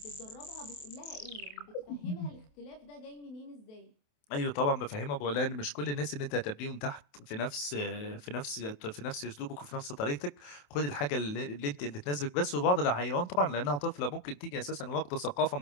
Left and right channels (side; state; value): right; late; 28 ms